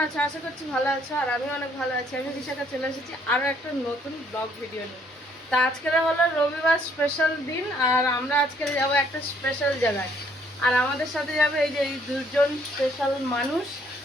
আছে? আশা করছি ভালো আছো, আর আমি অনেক ভালো আছি। আমি বিশাখা চলে এসেছি আরও একটা নতুন ব্লগ ভিডিও নিয়ে। তা আজকের হলো রবিবার স্পেশাল দিন, আর আমরা আজকে যাবো একটা স্পেশাল জায়গায়। আর আমাদের সাথে যাবে এই যে এই দুজন স্পেশাল মানুষ।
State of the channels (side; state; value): both; normal; correlation 0.65